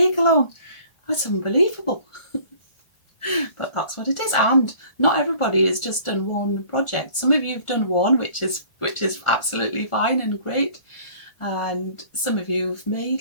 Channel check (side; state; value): right; late; 1.4 ms